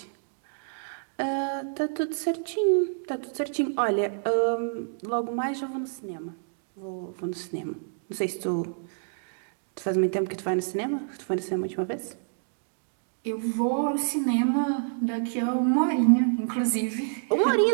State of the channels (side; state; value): left; silent; digital silence